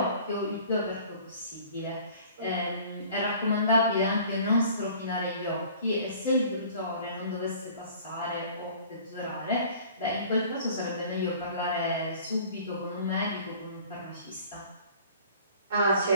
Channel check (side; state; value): both; inverted; correlation -0.49